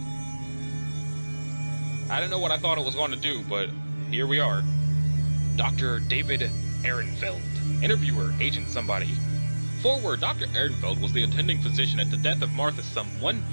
I don't know what I thought it was going to do, but here we are. Dr. David Ehrenfeld. Interviewer, Agent Somebody. Forward, Dr. Ehrenfeld was the attending physician at the death of Martha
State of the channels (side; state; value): both; inverted; correlation -1.00